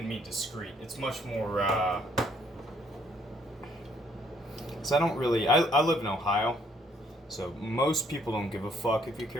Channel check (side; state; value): both; normal; correlation 0.67